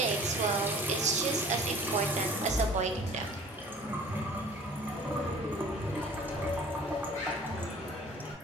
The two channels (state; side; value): normal; both; correlation 0.48